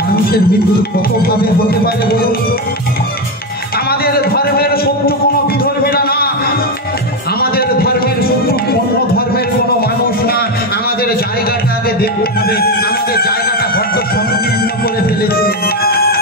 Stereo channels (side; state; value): both; normal; correlation 0.11